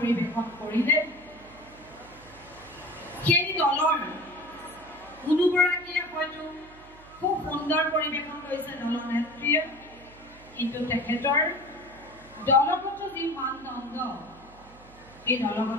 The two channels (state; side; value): noise; right; hum, 23 dB below the sound